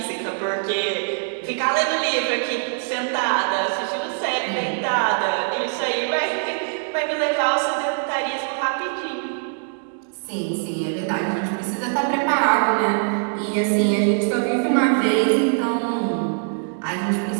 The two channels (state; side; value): silent; left; digital silence